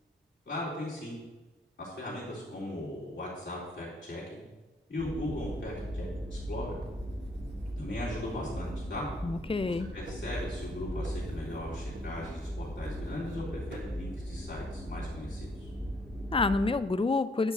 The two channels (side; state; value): both; normal; correlation 0.67